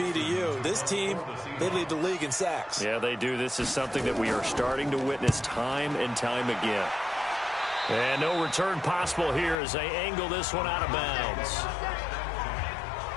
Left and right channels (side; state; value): right; drops out; at 9.6 s